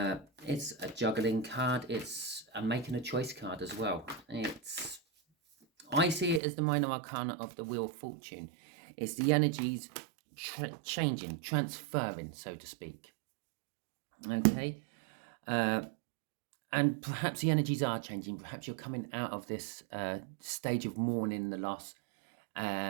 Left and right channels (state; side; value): drops out; left; at 6.4 s